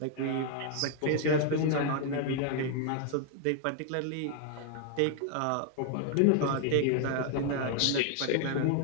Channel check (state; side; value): different; both; correlation 0.00